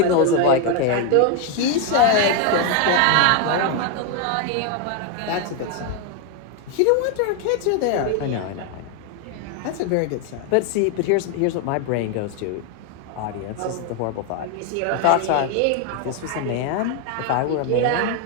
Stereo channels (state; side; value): different; both; correlation 0.01